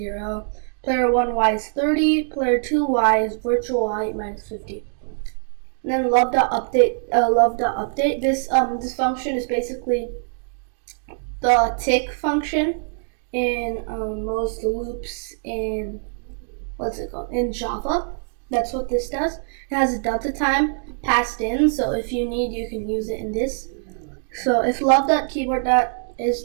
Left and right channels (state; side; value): silent; left; digital silence